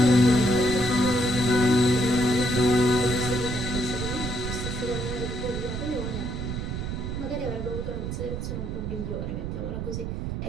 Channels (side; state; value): right; noise; rumble, 4 dB below the sound